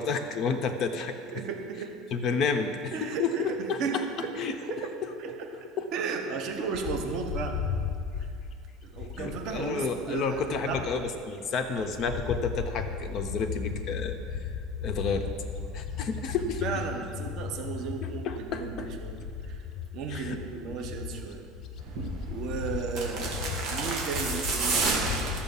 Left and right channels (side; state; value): both; normal; correlation 0.33